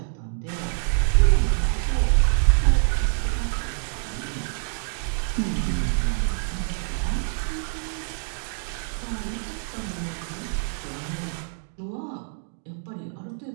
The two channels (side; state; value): left; silent; digital silence